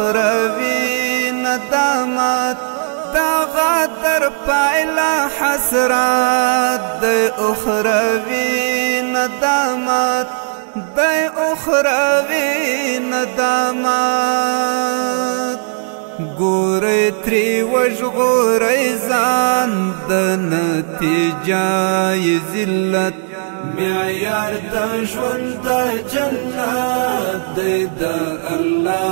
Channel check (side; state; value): left; silent; digital silence